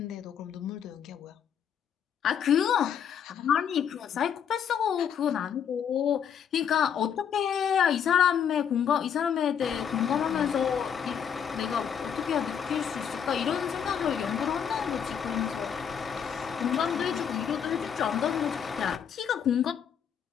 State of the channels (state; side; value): quieter; right; 8.0 dB